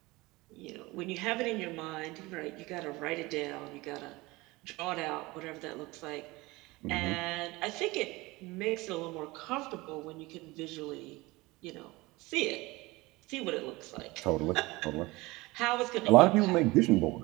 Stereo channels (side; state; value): left; quieter; 21.8 dB